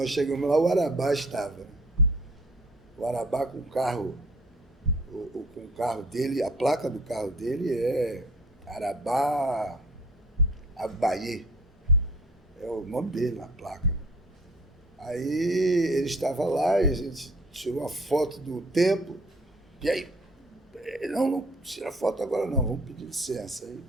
chegamos lá, o Arabá estava. O Arabá com o carro com o carro dele, a placa do carro dele é Arabá Abaie, é o nome dele na placa. Aí ele estava lá e a gente tirou uma foto do templo, e aí, não tira foto agora não, vamos pedir licença. Aí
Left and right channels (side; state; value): both; normal; correlation 0.52